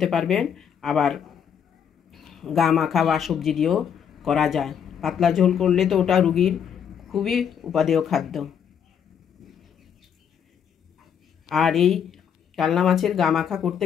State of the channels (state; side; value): quieter; right; 8.0 dB